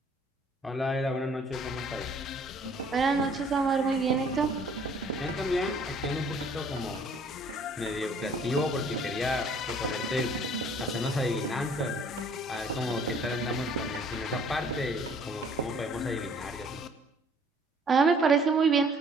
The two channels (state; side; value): normal; both; correlation 0.57